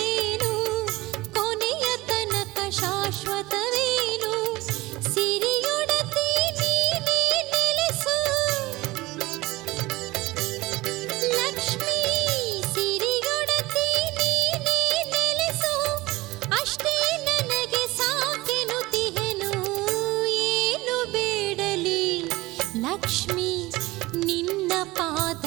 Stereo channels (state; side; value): quieter; left; 20.1 dB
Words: ಕೊನೆಯ ತನಕ ಶಾಶ್ವತವೇನು ಸಿರಿಯೊಡತಿ ನೀನೇ ನೆಲೆಸು ಲಕ್ಷ್ಮೀ ಸಿರಿಯೊಡತಿ ನೀನೇ ನೆಲೆಸು ಅಷ್ಟೇ ನನಗೆ ಸಾಕೆನುತಿಹೆನು ಏನು ಬೇಡಲಿ ಲಕ್ಷ್ಮೀ